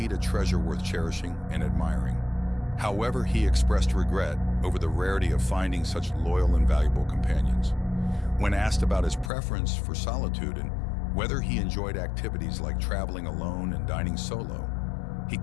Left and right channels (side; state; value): right; drops out; at 9.3 s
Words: a treasure worth cherishing and admiring. However, he expressed regret over the rarity of finding such loyal and valuable companions. When asked about his preference for solitude and whether he enjoyed activities like traveling alone and dining solo, he